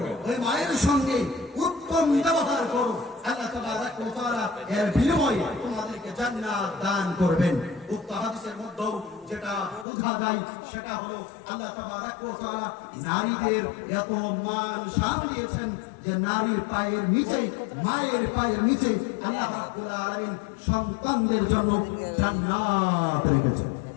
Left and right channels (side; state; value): right; drops out; at 9.9 s